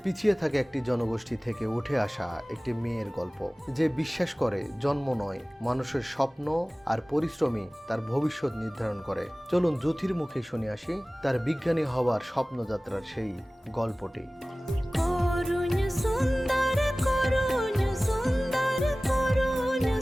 পিছিয়ে থাকা একটি জনগোষ্ঠী থেকে উঠে আসা একটি মেয়ের গল্প, যে বিশ্বাস করে জন্ম নয়, মানুষের স্বপ্ন আর পরিশ্রমই তার ভবিষ্যৎ নির্ধারণ করে। চলুন জ্যোতির মুখে শুনে আসি তার বিজ্ঞানী হওয়ার স্বপ্নযাত্রার সেই গল্পটি।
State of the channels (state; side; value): normal; both; correlation 0.98